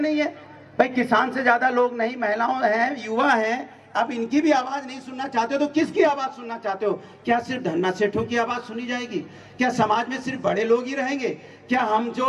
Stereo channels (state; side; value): identical; both; correlation 1.00